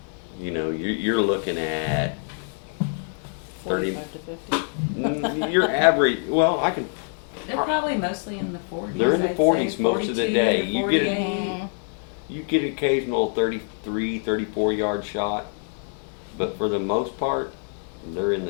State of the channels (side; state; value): right; silent; 57 dB below the other